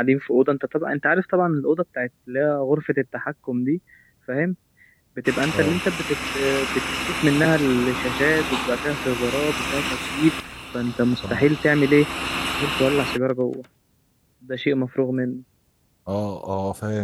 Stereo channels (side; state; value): both; identical; correlation 1.00